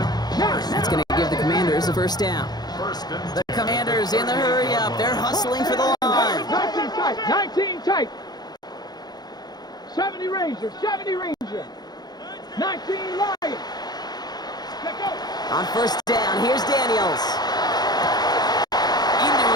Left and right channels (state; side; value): late; right; 0.19 ms